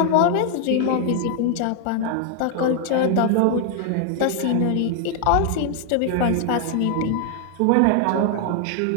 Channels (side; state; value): both; different; correlation 0.00